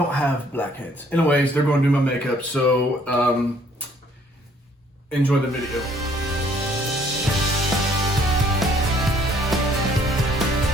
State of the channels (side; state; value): both; normal; correlation 0.62